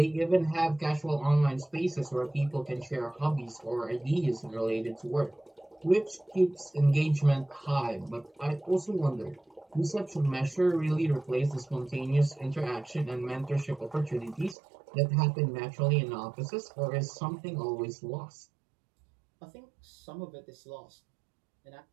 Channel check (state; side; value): drops out; left; at 14.6 s